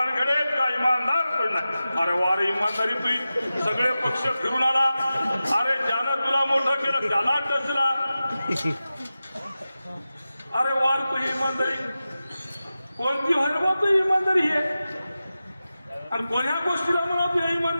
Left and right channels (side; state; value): both; inverted; correlation -0.94